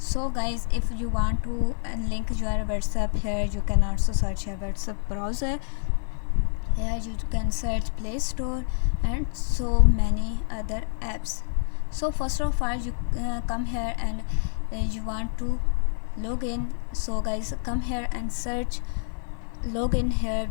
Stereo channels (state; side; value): silent; right; 60 dB below the other